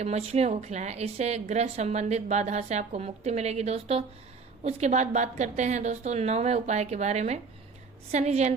मछलियों को खिलाएं। इससे ग्रह संबंधित बाधा से आपको मुक्ति मिलेगी दोस्तों। उसके बाद बात करते हैं दोस्तों 9वें उपाय के बारे में। शनि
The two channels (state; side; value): quieter; left; 4.8 dB